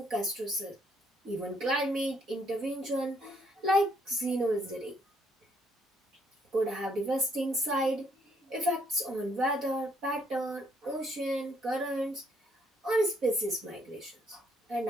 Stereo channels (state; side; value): normal; both; correlation 0.69